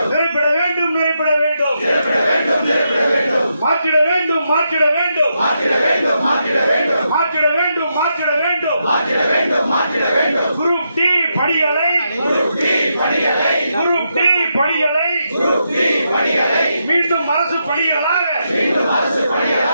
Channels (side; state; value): both; inverted; correlation -0.82